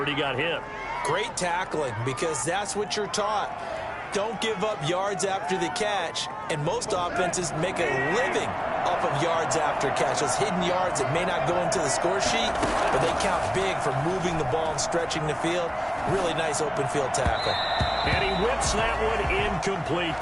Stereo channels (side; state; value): both; identical; correlation 1.00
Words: he got hit. Great tackling, because that's what you're taught. Don't give up yards after the catch, and most offenses make a living off of yards after catch. Those hidden yards that may not go into the score sheet, but they count big for moving the ball and stretching the field. Really nice open field tackle. And he whips that one incomplete